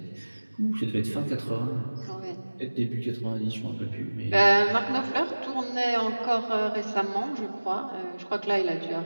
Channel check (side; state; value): both; inverted; correlation -1.00